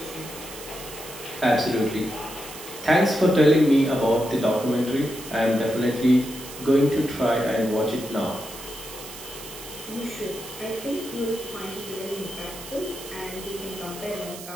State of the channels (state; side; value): noise; right; hiss, 13 dB below the sound